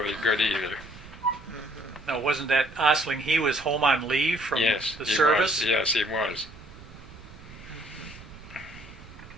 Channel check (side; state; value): right; noise; rumble, 18 dB below the sound